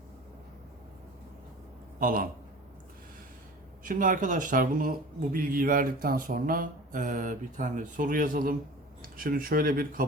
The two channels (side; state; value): both; normal; correlation 0.39